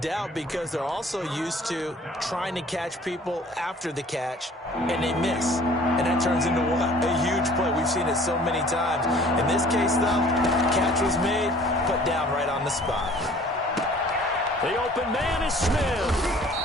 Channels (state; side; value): normal; both; correlation 0.52